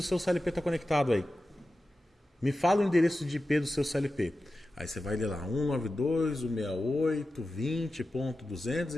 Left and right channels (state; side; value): normal; both; correlation 0.93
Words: seu CLP está conectado aí. Me fala o endereço de IP do seu CLP. Aí você vai ler lá,